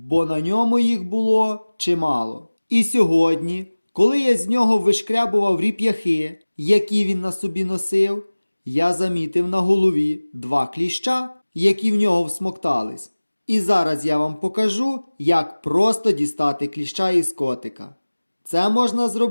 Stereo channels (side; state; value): both; inverted; correlation -1.00